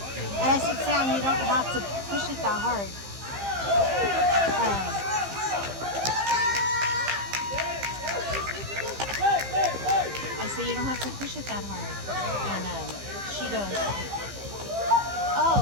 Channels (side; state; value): left; late; 15 ms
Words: And I said, Sam, you don't have to push it that hard. I said, you don't have to push it that hard. And she goes,